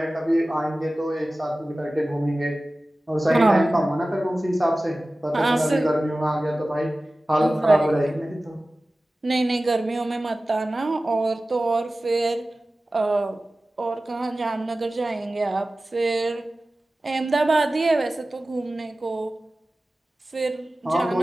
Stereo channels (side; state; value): both; normal; correlation 0.96